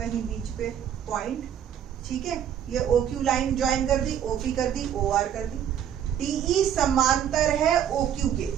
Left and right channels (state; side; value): quieter; left; 9.4 dB